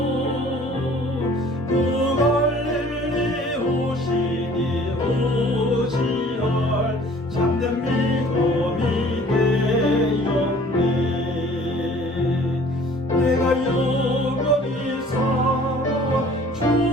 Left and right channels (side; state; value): both; normal; correlation 0.52